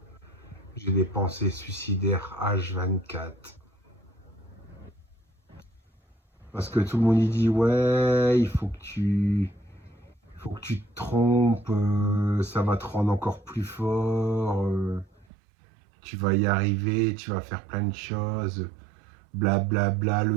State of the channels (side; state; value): left; drops out; at 15.2 s